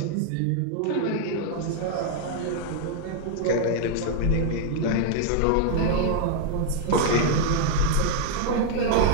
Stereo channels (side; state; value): both; different; correlation 0.00